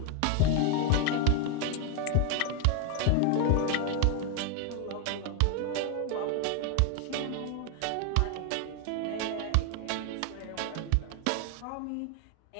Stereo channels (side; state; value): both; different; correlation 0.01